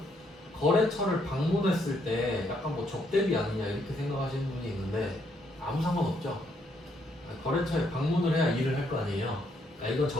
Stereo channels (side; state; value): both; normal; correlation 0.73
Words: 거래처를 방문했을 때 약간 뭐 접대비 아니냐 이렇게 생각하시는 분이 있는데 아무 상관없죠. 거래처에 방문을 해야 일을 할 거 아니에요. 그러니까 이건